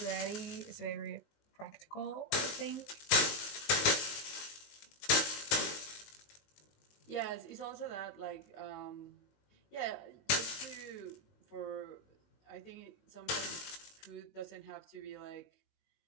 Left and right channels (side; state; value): right; late; 19 ms